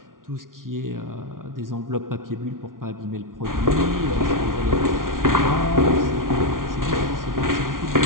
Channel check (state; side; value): late; left; 0.90 ms